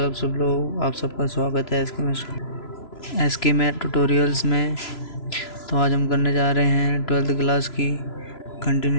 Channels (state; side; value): late; right; 3.0 ms